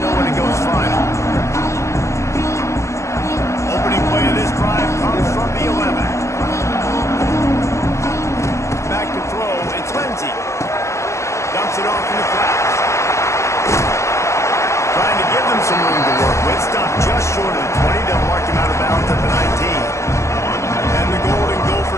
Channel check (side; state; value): right; late; 0.14 ms